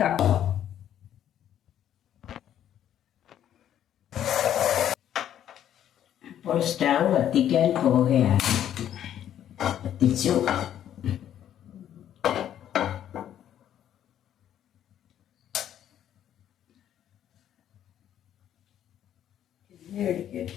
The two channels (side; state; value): right; quieter; 10.6 dB